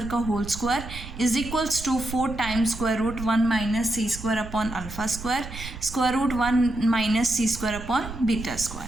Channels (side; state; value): right; noise; rumble, 11 dB below the sound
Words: का whole square is equals to 4 times square root 1 minus C square upon alpha square root 1 minus C square upon beta